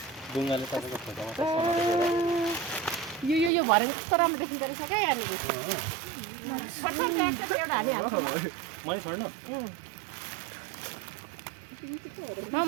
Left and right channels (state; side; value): drops out; left; at 3.5 s